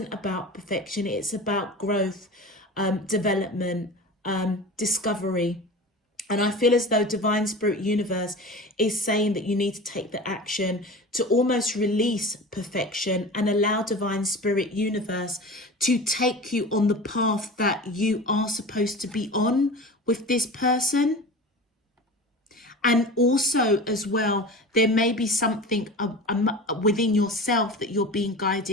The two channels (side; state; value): both; normal; correlation 0.34